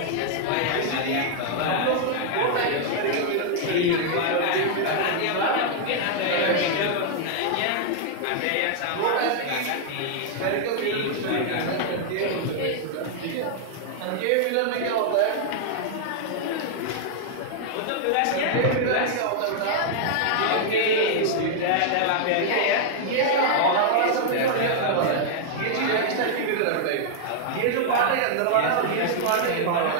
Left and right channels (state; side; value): different; both; correlation -0.01